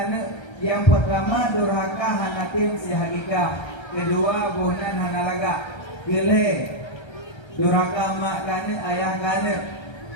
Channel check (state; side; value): late; right; 1.3 ms